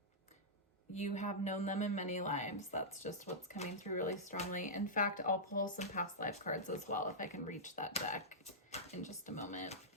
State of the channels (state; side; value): normal; both; correlation -0.11